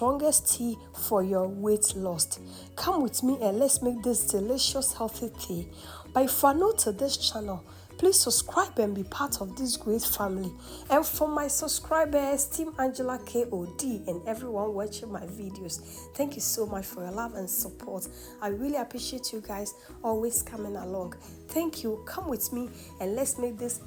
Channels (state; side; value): identical; both; correlation 1.00